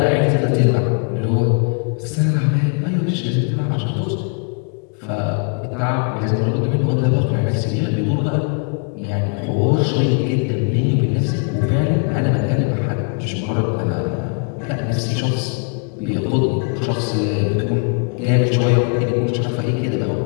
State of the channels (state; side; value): quieter; right; 39.2 dB